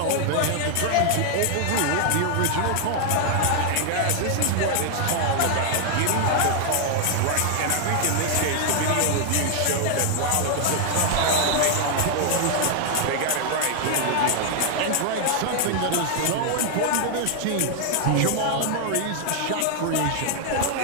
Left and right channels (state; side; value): different; both; correlation 0.00